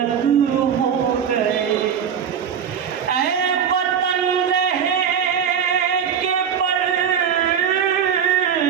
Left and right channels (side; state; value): left; quieter; 7.9 dB